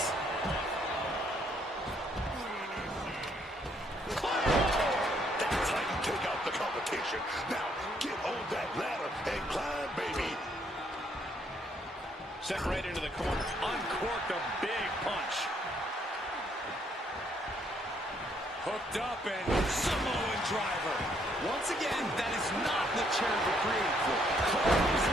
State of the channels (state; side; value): normal; both; correlation 0.69